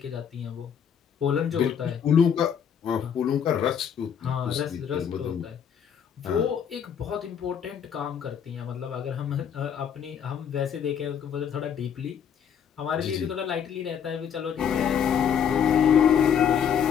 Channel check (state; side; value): quieter; right; 8.0 dB